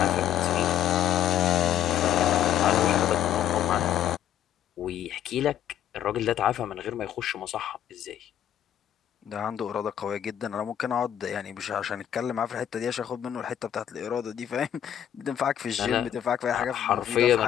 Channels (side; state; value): right; quieter; 10.5 dB